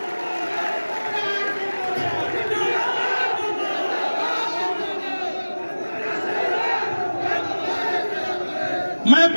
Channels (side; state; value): both; inverted; correlation -1.00